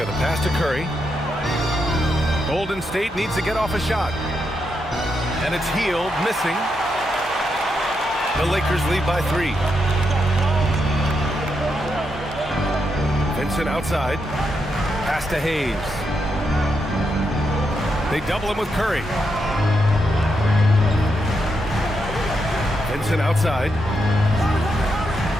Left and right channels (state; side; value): normal; both; correlation 0.82